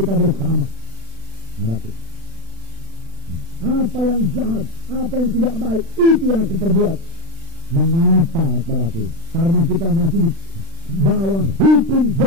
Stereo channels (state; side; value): late; left; 36 ms